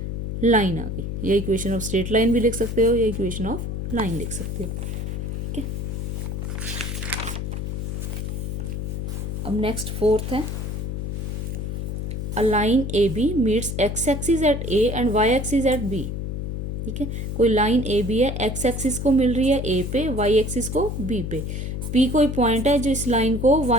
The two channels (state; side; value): noise; left; hum, 4 dB below the sound